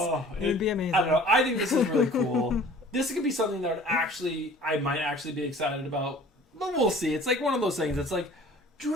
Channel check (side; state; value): both; normal; correlation 0.48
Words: it would be amazing. I don't know. I think this is really cool. This could be something that I might actually be excited about. But we'll see. It's, like, one of those things. It's, like,